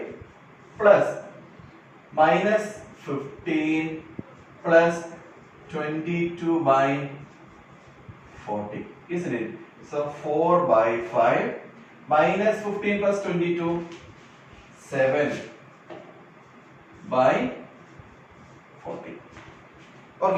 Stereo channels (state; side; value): identical; both; correlation 1.00